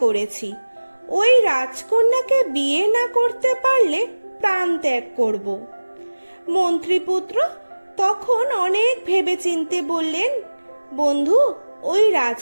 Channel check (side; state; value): both; inverted; correlation -1.00